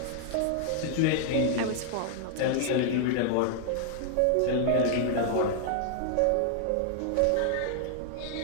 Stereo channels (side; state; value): both; different; correlation -0.01